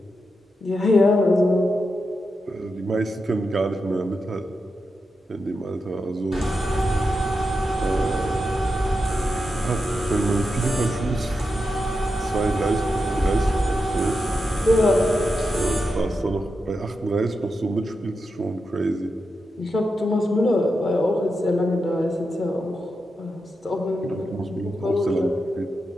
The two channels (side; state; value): both; normal; correlation 0.88